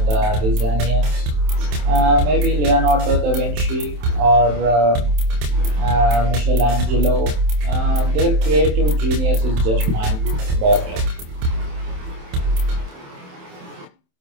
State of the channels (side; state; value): left; late; 27 ms